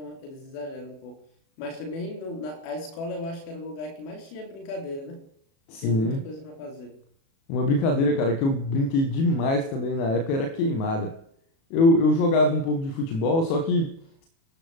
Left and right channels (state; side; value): late; right; 36 ms